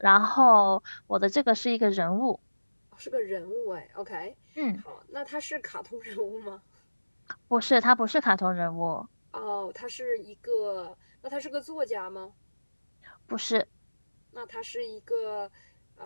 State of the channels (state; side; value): inverted; both; correlation -1.00